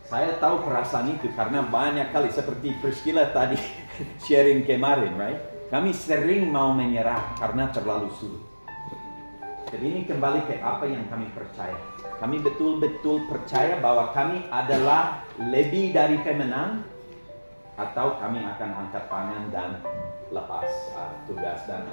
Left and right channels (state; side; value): inverted; both; correlation -1.00